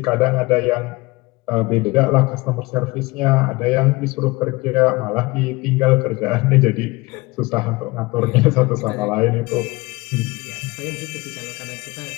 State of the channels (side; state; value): right; quieter; 22.9 dB